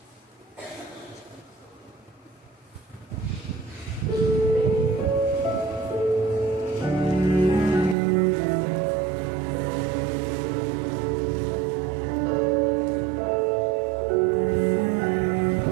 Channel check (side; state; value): left; drops out; at 8.0 s